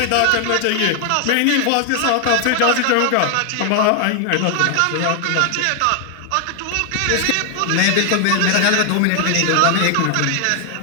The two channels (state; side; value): different; both; correlation 0.00